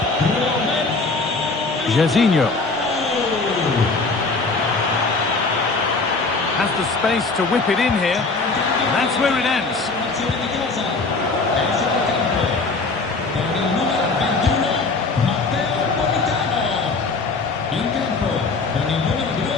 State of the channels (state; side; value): quieter; right; 3.9 dB